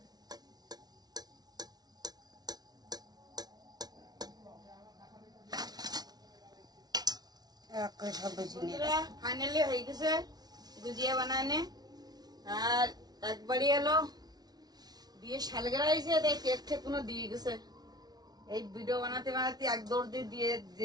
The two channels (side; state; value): left; late; 0.19 ms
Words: ফাইনালি হয়ে গেছে গুজিয়া বানানে। আর একবারই এলো দিয়ে সালগেরা হয়েছে, তাই কেক ঠেক কোনো দিয়ে গেছে। এই ভিডিও বানাতে বানাতে এক দৌড় দিয়ে